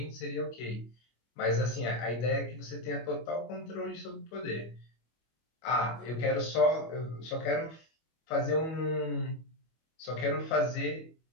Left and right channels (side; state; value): right; late; 25 ms